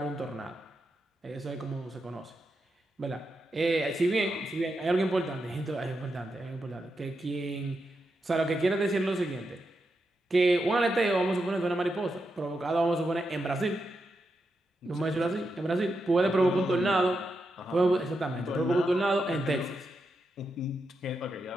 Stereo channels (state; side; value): normal; both; correlation 0.86